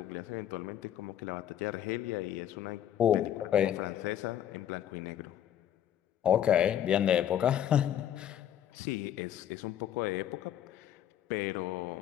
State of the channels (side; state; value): right; quieter; 10.7 dB